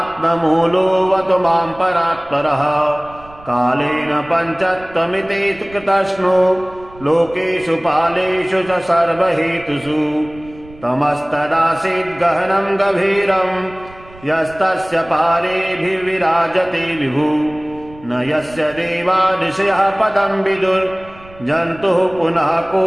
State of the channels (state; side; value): noise; right; rumble, 21 dB below the sound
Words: मां परात्परः कालेन पञ्चत्वमिति कृतस्नो लोकेषु पालेषु च सर्वहेतुषु तमस्तदासीद् गहनं गभीरं यस्तस्य पारेभिर्विराजते विभु न यस्य देवा ऋषयः पदं विदुर्जन्तुः पुनः